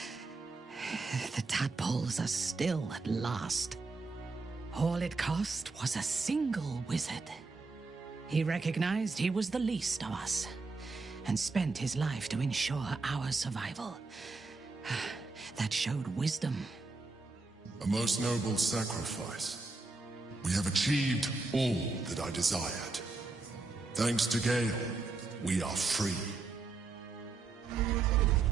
The tadpoles are still at last. All it cost was a single wizard. He recognized he was the least of us, and spent his life to ensure our survival. That showed wisdom. A most noble sacrifice. We have achieved all that I desired. Thanks to Gale, we are free.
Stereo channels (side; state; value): left; quieter; 3.8 dB